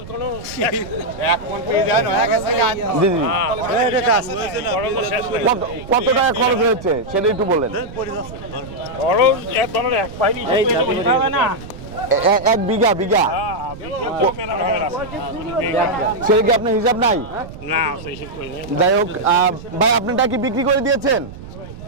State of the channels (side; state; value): right; noise; rumble, 14 dB below the sound